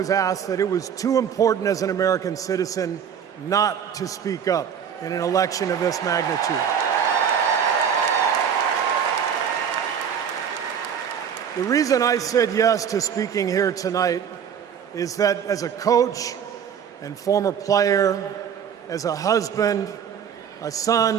asked that it was too important as an American citizen not to speak up in an election of this magnitude. The reason I said yes to speaking here tonight is that as a coach and former player, as a husband, a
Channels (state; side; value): quieter; left; 8.0 dB